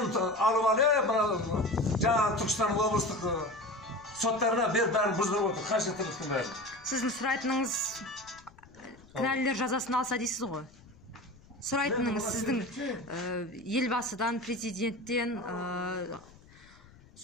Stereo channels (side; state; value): left; noise; rumble, 25 dB below the sound